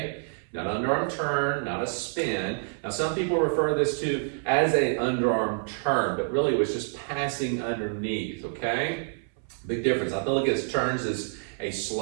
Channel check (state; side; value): silent; left; 60 dB below the other